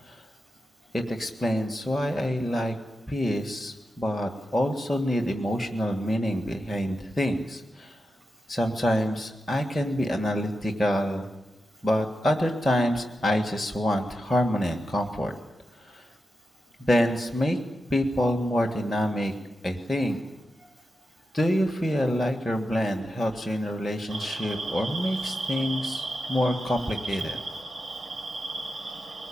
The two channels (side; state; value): both; normal; correlation 0.89